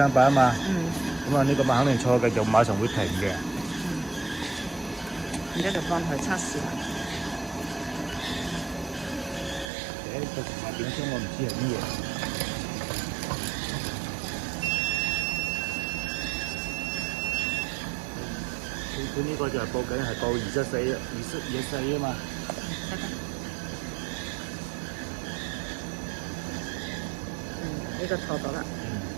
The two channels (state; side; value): drops out; left; at 9.7 s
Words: 啊嘛。咁啊呢個碼肯定錯嘅，就馬上會停嘅。而家就幫佢測試啦。個碼點聲我唔知係乜嘢。佢呢個就係報緊係報24啊嘛。呢個錯咗啦。